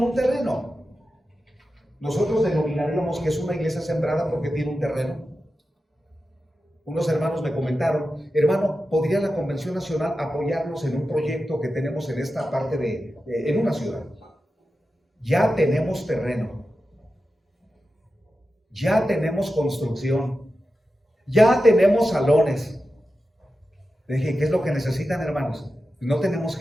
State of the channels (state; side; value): normal; both; correlation 0.92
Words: un terreno. Nosotros denominaríamos que es una iglesia sembrada porque tiene un terreno. Unos hermanos me comentaron, hermano, ¿podría la Convención Nacional apoyarnos en un proyecto que tenemos en esta parte en una ciudad? Ya tenemos terreno, ya tenemos construcción, ya tenemos salones. Le dije, ¿qué es lo que necesitan, hermanos? No tenemos